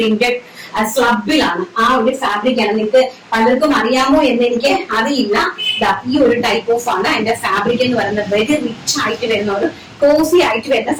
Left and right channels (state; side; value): identical; both; correlation 1.00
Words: സ്ലബിലാണ്. ആ ഒരു ഫാബ്രിക് ആണ്. നിങ്ങൾക്ക് പലർക്കും അറിയാമോ എന്ന് എനിക്ക് അറിയില്ല. ഈ ഒരു ടൈപ്പ് ഓഫ് ആണ് അതിന്റെ ഫാബ്രിക് എന്ന് പറയുന്നത്. വെരി റിച്ച് ആയിട്ട് വരുന്ന ഒരു കോസി ആയിട്ട് വരുന്ന